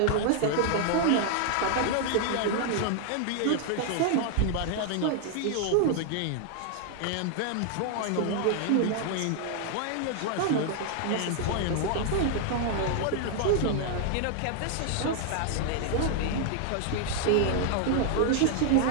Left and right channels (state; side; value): different; both; correlation 0.00